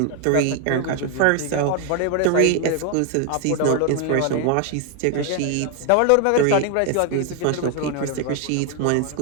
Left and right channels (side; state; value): both; different; correlation 0.01